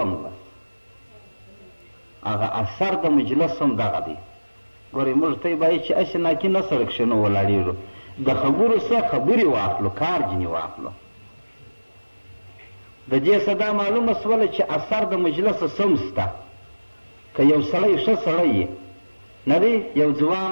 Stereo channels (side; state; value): both; inverted; correlation -1.00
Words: هغه اثر د مجلس هم دغه دی. ګورئ موږ ته یې باید چې هسې ناکي نه سره کښې نه ولاړېږو، د خبرو څخه خبرې واخلو، کار ځینې واخلو. د دې څه دا معلومه شوله چې اثر د مجلسه سم شته. که یو سړی ښه سړی یې نه دی، یو ځوان